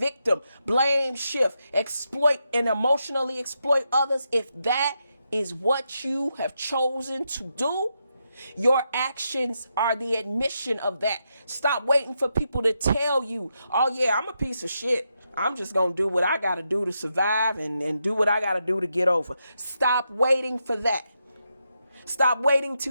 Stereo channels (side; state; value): both; inverted; correlation -0.84